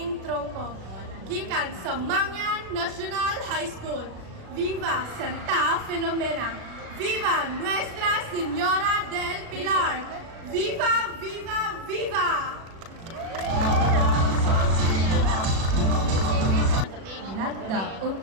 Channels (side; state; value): left; late; 37 ms